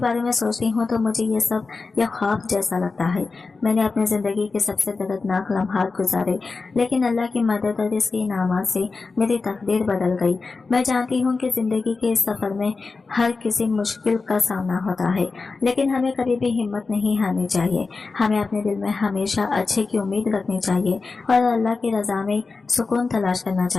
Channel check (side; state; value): right; quieter; 4.2 dB